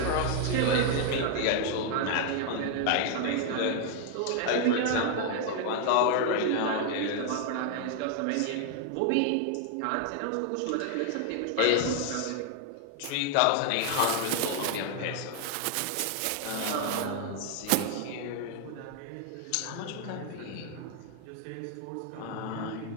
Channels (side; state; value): both; different; correlation 0.00